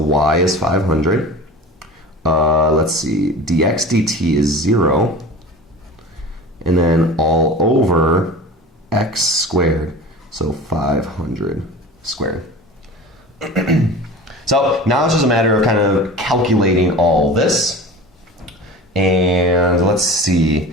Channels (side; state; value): both; normal; correlation 0.36